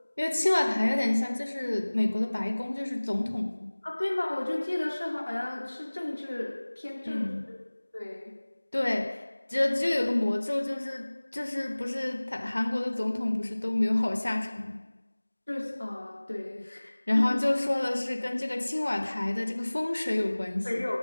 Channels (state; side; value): inverted; both; correlation -1.00